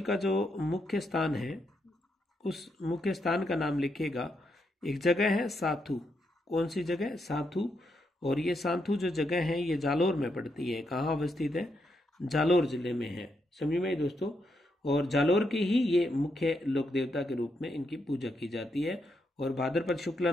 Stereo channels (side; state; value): both; normal; correlation 0.80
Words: का जो मुख्य स्थान है, उस मुख्य स्थान का नाम लिखिएगा। एक जगह है साथू। कौन सी जगह? साथू। और ये साथू जो जगह है ये जालोर में पड़ती है। कहाँ अवस्थित है? जालोर जिले में है। समझ में दोस्तों? और जालोर की ही ये मुख्य लोक देवता के रूप में इनकी पूजा की जाती है, और भाद्रपद शुक्ला